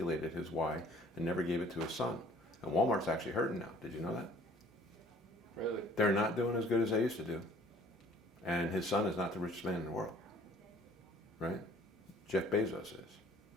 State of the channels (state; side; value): normal; both; correlation 0.53